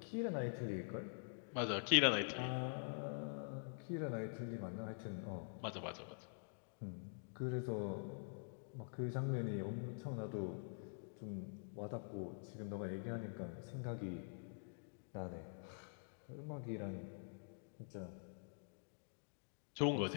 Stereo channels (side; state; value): right; silent; digital silence